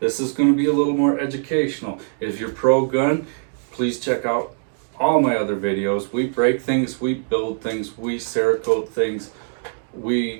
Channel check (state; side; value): silent; left; digital silence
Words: is going to be a little more educational. If you're pro gun, please check out all my other videos. We break things, we build things, we Cerakote things.